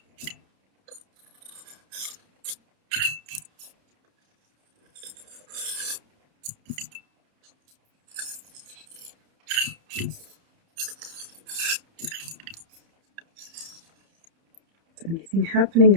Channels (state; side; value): late; left; 30 ms